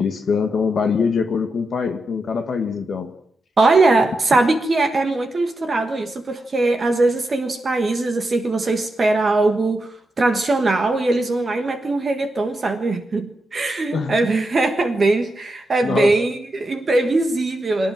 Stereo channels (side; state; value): both; normal; correlation 0.87